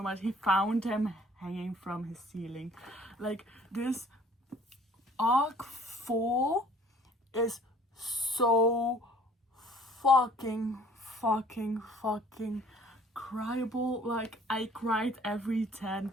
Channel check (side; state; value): both; normal; correlation 0.54